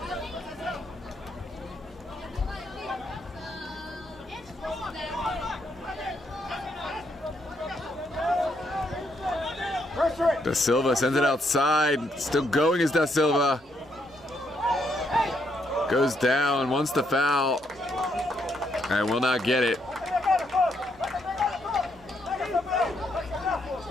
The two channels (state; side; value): normal; both; correlation 0.76